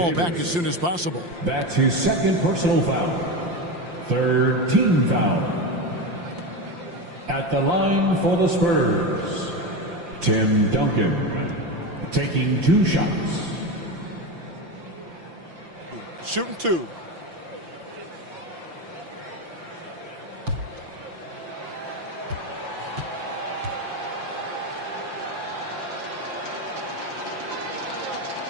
back as soon as possible. That's his second personal foul. Third team foul. At the line for the Spurs, Tim Duncan, taking 2 shots. Shooting 2.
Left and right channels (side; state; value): left; late; 5.8 ms